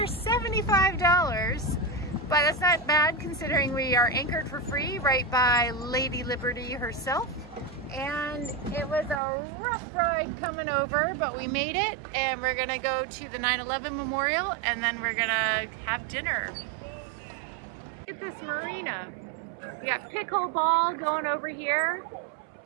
$75. But that's not bad considering we are anchored for free right by Lady Liberty herself. And it was a rough ride coming over, but we made it. And we're gonna go to the 9/11 Memorial, and then we're gonna have dinner. Look at this marina. We got pickleball going over here.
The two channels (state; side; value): drops out; left; at 9.2 s